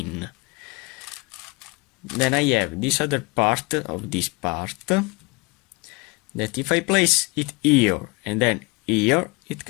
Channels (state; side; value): quieter; right; 27.0 dB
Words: Then I have this other part of this part, that if I place it here and then here, it